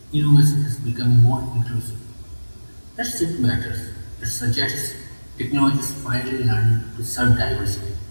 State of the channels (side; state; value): both; inverted; correlation -1.00